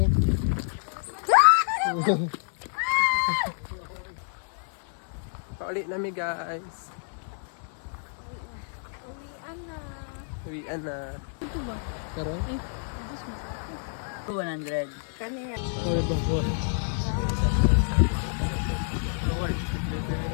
Paulit na mi guys. Uwian na. Karon? 100. Sorry bang buwan.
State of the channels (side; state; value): right; silent; digital silence